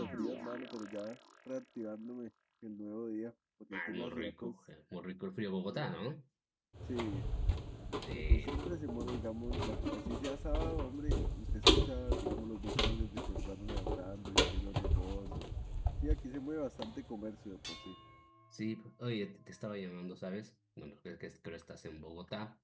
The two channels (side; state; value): both; identical; correlation 1.00